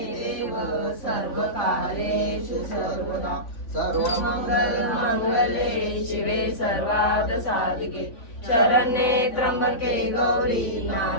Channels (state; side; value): late; right; 3.5 ms